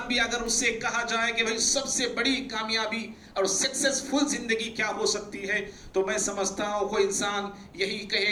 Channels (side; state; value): both; identical; correlation 1.00